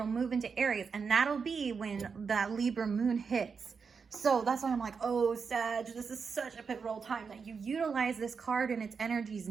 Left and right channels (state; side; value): quieter; left; 5.6 dB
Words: move into Aries. And that'll be when that Libra moon hits. So that's why I'm like, oh, Sag, this is such a pivotal time that you utilize this card and its energies